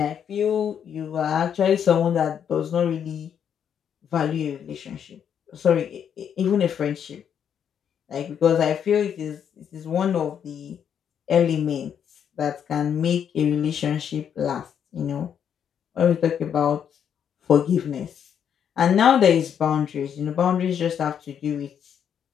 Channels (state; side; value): quieter; right; 8.4 dB